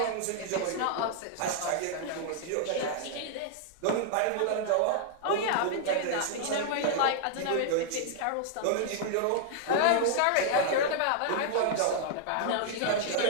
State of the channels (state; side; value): different; both; correlation -0.01